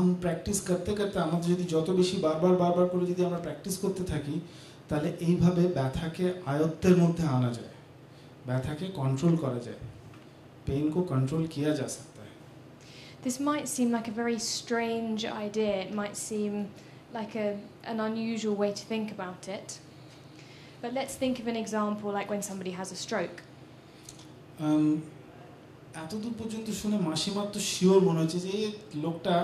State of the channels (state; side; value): identical; both; correlation 1.00